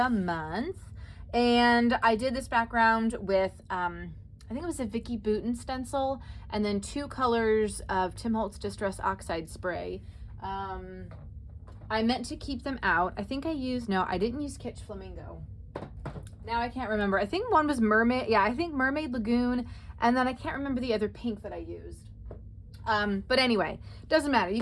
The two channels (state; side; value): identical; both; correlation 1.00